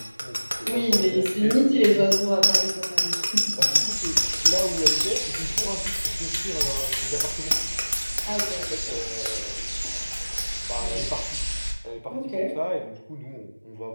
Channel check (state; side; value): inverted; both; correlation -1.00